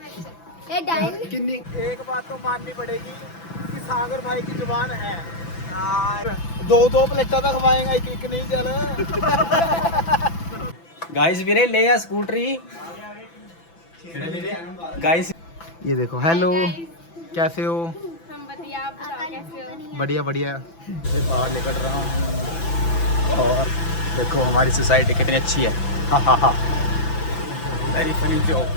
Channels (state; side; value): late; right; 6.0 ms